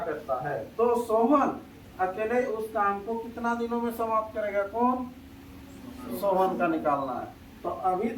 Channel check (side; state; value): both; identical; correlation 1.00